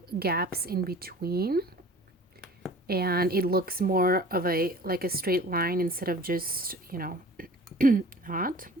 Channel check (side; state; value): both; normal; correlation 0.45